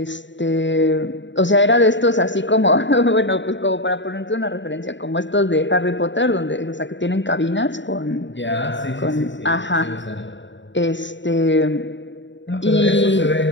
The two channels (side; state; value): right; late; 0.54 ms